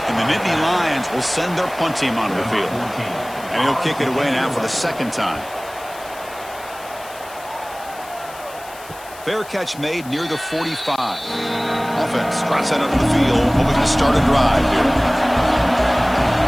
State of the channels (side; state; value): left; noise; hiss, 19 dB below the sound